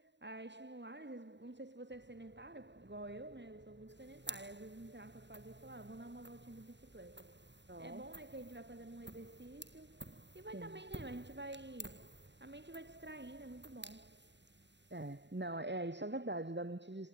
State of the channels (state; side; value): late; left; 0.52 ms